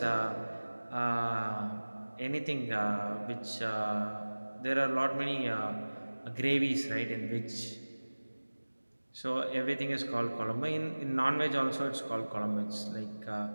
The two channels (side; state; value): both; inverted; correlation -1.00